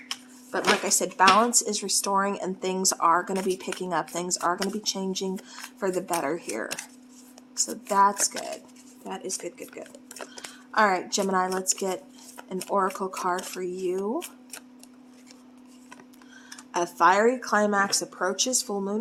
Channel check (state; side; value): identical; both; correlation 1.00